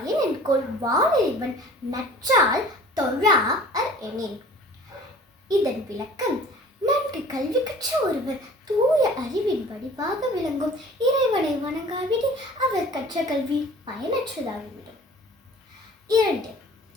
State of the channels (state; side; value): normal; both; correlation 0.47